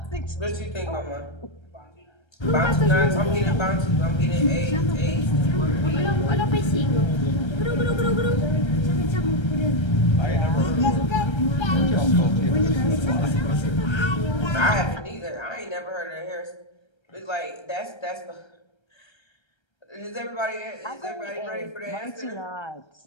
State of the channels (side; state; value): right; late; 1.3 ms